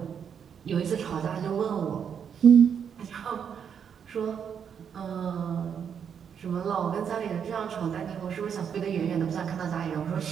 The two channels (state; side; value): quieter; left; 7.6 dB